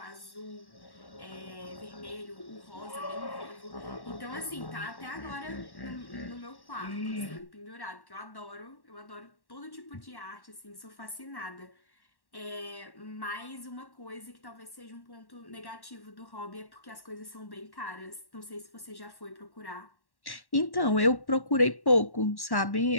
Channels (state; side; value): late; right; 1.1 ms